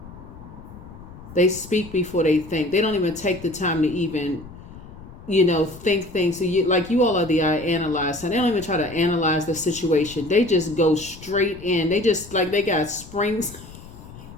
They speak before they think. They don't even take the time to even, you know, think things. So you all are the I analyze, and they don't even try to analyze the situation. They just go straight in. They just, like, they got springs.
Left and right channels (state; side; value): noise; left; rumble, 17 dB below the sound